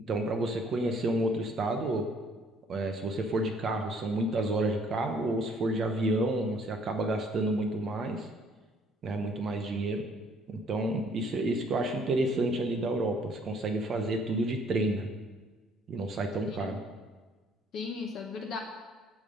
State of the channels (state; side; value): normal; both; correlation 0.61